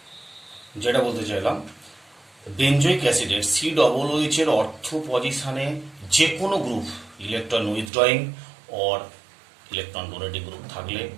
যেটা বলতে চাইলাম, benzoic অ্যাসিডের COOH এর অর্থ পজিশনে যে কোনো group electron withdrawing or electron donating group থাকলে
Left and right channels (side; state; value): left; drops out; at 7.9 s